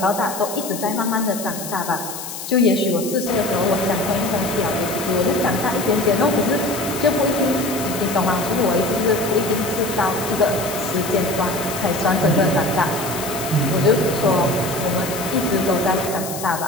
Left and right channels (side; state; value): left; noise; hiss, 9 dB below the sound